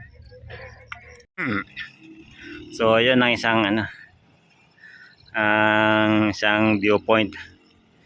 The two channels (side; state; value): both; identical; correlation 1.00